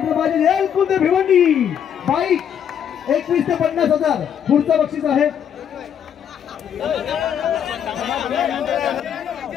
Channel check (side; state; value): right; quieter; 8.7 dB